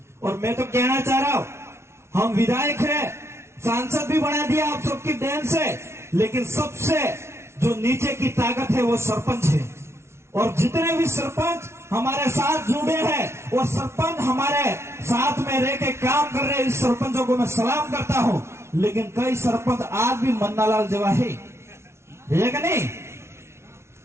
और मैं तो कहना चाह रहा हूं, हम विधायक है, सांसद भी बना दिया आप सबकी देन से, लेकिन सबसे जो नीचे की ताकत है वो सरपंच है। और जितने भी सरपंच हमारे साथ जुड़े हैं, वो सरपंच हमारे साथ में रह के काम कर रहे हैं, इस सरपंचों को मैं सलाम करता हूं। लेकिन कई सरपंच आज भी मन्नालाल जेवा है कि नहीं?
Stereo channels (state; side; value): late; left; 0.13 ms